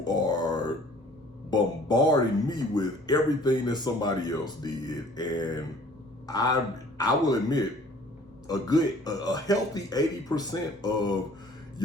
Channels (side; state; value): both; normal; correlation 0.53